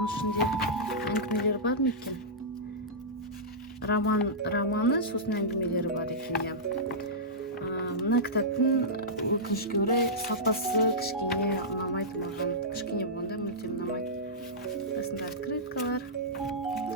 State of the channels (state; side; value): normal; both; correlation -0.14